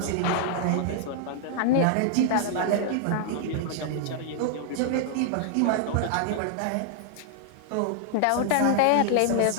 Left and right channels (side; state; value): both; different; correlation -0.01